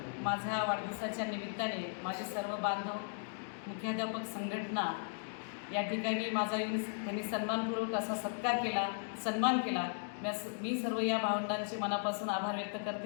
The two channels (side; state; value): right; silent; digital silence